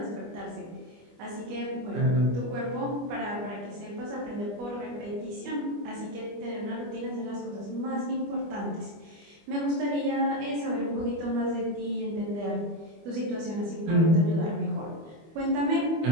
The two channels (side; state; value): left; late; 25 ms